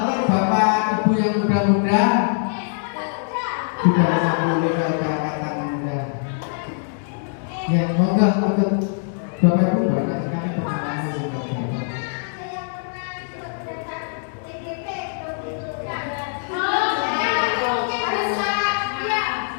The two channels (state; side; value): silent; right; digital silence